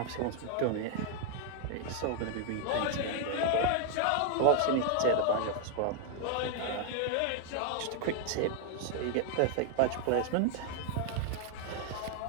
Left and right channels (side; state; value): both; different; correlation 0.00